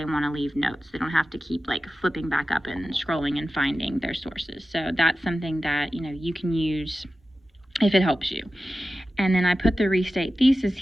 want to leave notes. They don't have to keep flipping back up and scrolling and finding their sources. So that's something that, you can use if it helps you. And then I put the restate thesis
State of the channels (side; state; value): both; normal; correlation 0.94